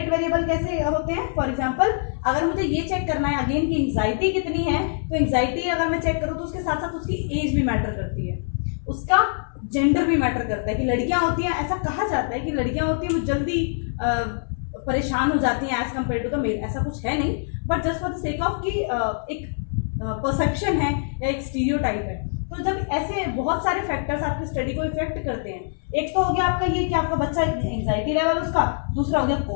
वेरिएबल कैसे होते हैं? फॉर एग्जांपल, अगर मुझे ये चेक करना है अगेन की एंग्जाइटी कितनी है, तो एंग्जाइटी अगर मैं चेक करूँ तो उसके साथ साथ उसकी एज भी मैटर करती है, उसका जेंडर भी मैटर करता है। कि लड़कियां होती हैं, ऐसा कहा जाता है कि लड़कियां होती हैं वो जल्दी परेशान हो जाती हैं as compare to the male. ऐसा कुछ है नहीं, but just for the sake of कि एक परसेप्शन है या एक स्टीरियोटाइप है। तो जब ऐसे बहुत सारे फैक्टर्स आपकी स्टडी को इफेक्ट करते हैं, एक तो हो गया आपका ये कि आपका बच्चा एंग्जाइटी लेवल उसका, दूसरा हो गया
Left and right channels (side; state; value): right; silent; 63 dB below the other